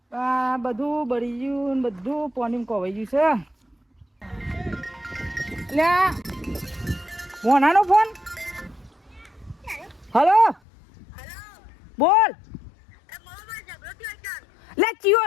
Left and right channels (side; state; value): right; drops out; at 10.6 s